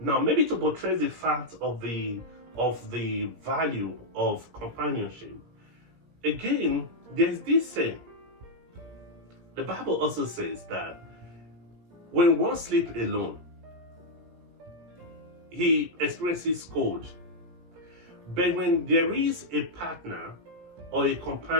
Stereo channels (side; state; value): left; late; 17 ms